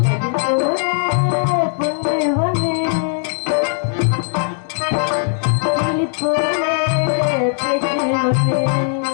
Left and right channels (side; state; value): right; silent; digital silence